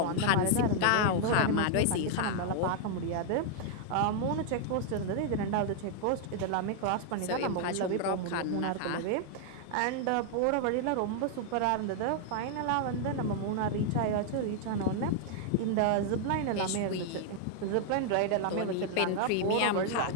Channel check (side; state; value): both; different; correlation 0.00